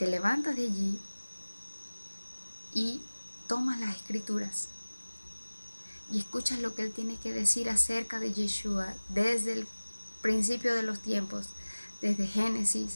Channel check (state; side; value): inverted; both; correlation -1.00